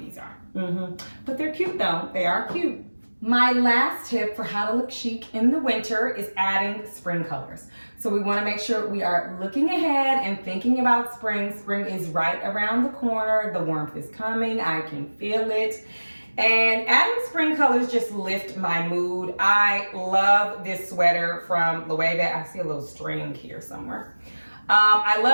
are. But they're cute though, they are cute. My last tip for how to look chic in the winter is adding spring colors. So we want to make sure we are looking ahead and thinking about spring. Spring is right around the corner. The warmth is coming. I can feel it. And adding spring colors just lift my mood. I love this sweater from Loewe. I see a little string here somewhere. I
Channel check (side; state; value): both; inverted; correlation -1.00